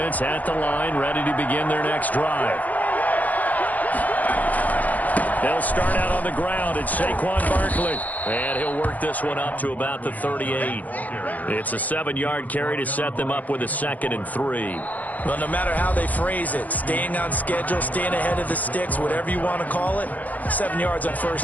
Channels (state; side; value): late; right; 0.079 ms